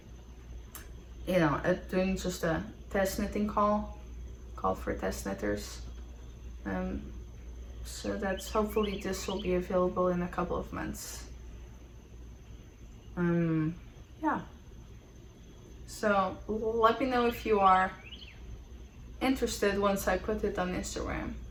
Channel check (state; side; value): identical; both; correlation 1.00